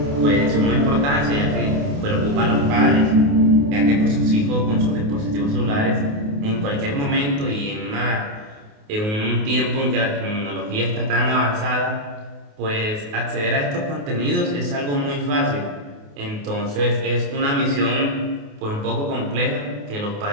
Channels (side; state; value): left; late; 28 ms